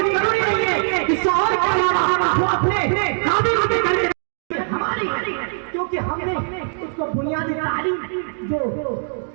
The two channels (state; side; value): silent; left; digital silence